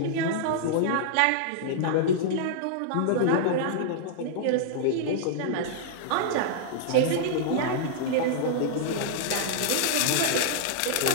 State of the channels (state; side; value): different; both; correlation -0.01